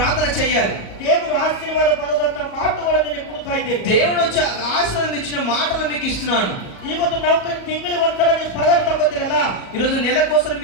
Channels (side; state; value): right; late; 38 ms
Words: చేయాలి. ದೇವರು ಆಶೀರ್ವಾದ ಬರೋದಂತ ಮಾತುಗಳು ನಿನಗೆ ಕೊಡ್ತಾ ಇದ್ದೇನೆ. దేవుడు వచ్చి ఆశీర్వాదం ఇచ్చిన మాటలు మీకు ఇస్తున్నాను. ಇವತ್ತು ನೌಕರಿ ತಿಂಗಳಿಗೆ ಒಂದ್ಸಲ ನೀವು ಪಗಾರ ತಗೋತೀರಲ್ಲ, ఈరోజు నెలకోసం